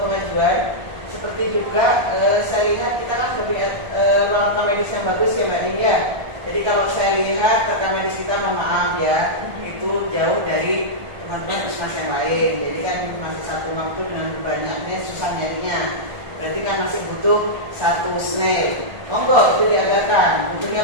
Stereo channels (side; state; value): left; late; 1.4 ms